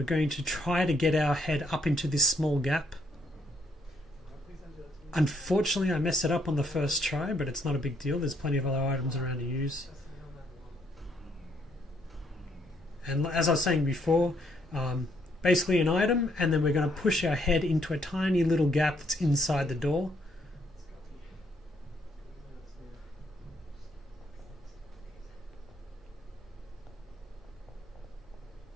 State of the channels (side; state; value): both; normal; correlation 0.71